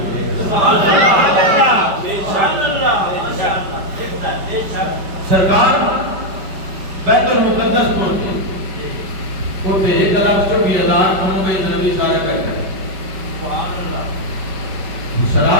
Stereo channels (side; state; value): left; late; 5.1 ms